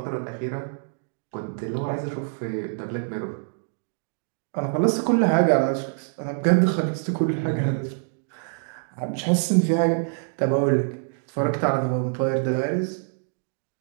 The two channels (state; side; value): silent; left; digital silence